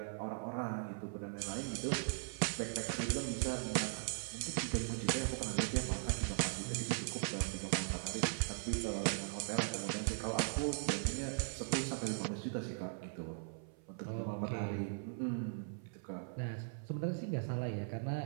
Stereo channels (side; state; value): left; silent; 52 dB below the other